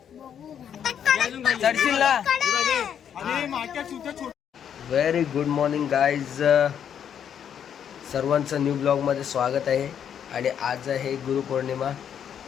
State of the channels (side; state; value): right; quieter; 8.7 dB